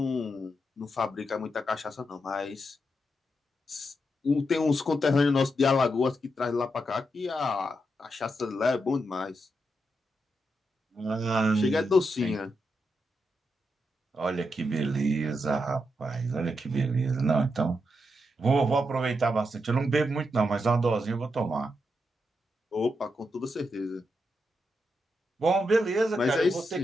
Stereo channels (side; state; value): both; normal; correlation 0.84